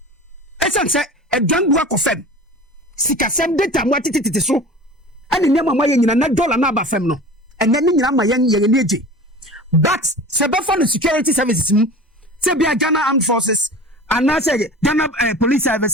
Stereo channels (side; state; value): both; normal; correlation 0.37